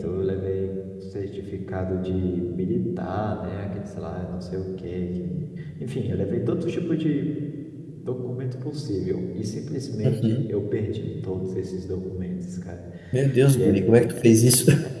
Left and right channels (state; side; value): identical; both; correlation 1.00